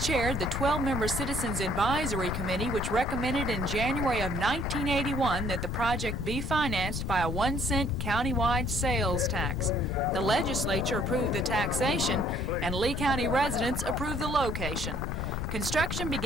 chaired the 12-member Citizens Advisory Committee, which recommended in January of 1981 that the project be financed by a 1-cent countywide sales tax. The legislature approved the taxation, and Lee County residents approved the location. Construction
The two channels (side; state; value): left; noise; rumble, 3 dB below the sound